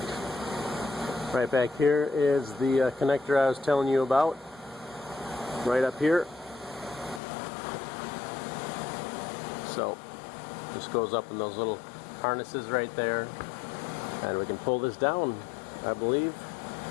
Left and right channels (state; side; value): drops out; right; at 7.2 s